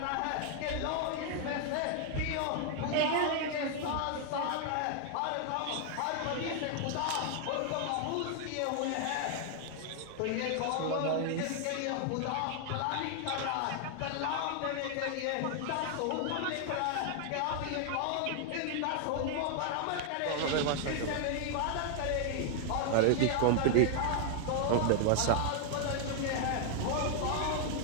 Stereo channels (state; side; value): different; both; correlation 0.00